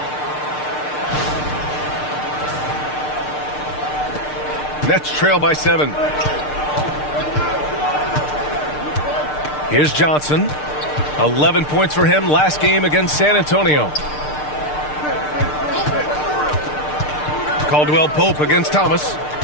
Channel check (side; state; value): right; late; 6.6 ms